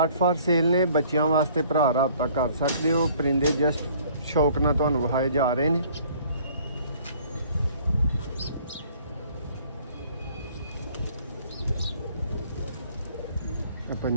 फॉर सेल ने, बच्चों वास्ते भरा राबता कर सकते हो। परिंदे जस्ट शौक ना तुहानू विखाए जा रहे हैं।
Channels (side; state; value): both; inverted; correlation -0.56